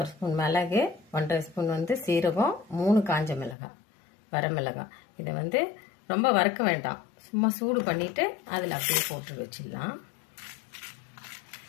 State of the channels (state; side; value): drops out; right; at 3.6 s